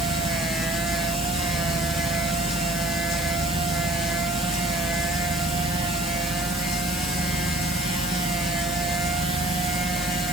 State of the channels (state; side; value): noise; right; hiss, 10 dB below the sound